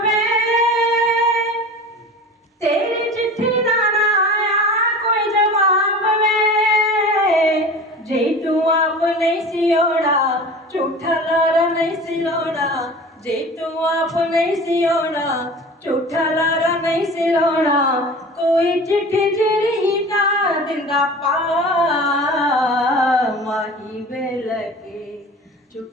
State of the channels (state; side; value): normal; both; correlation 0.37